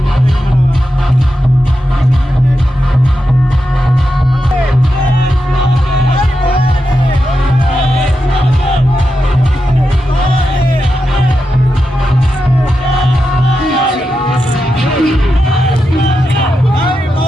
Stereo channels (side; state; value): both; normal; correlation 0.88